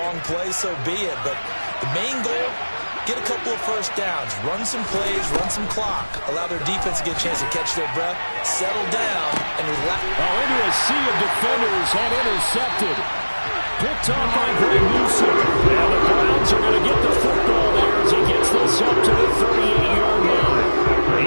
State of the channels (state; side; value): inverted; both; correlation -1.00